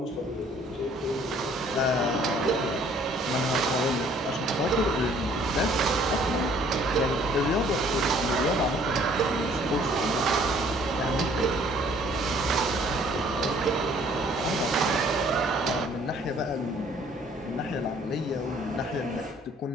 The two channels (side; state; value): both; normal; correlation 0.58